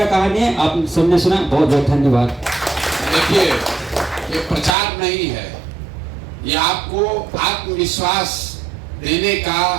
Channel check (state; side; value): drops out; left; at 4.8 s